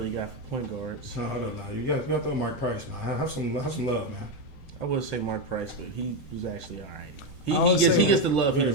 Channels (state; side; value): late; right; 7.8 ms